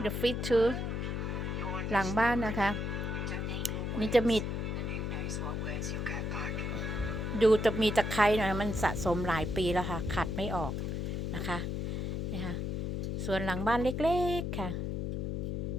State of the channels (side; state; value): left; noise; hum, 2 dB below the sound